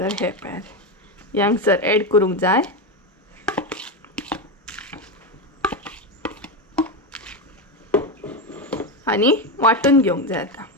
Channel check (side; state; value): both; normal; correlation 0.13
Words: हे पळयात हे हांगसर ऍड करूंक जाय. आनी वांटून घेवंक जाय. आतां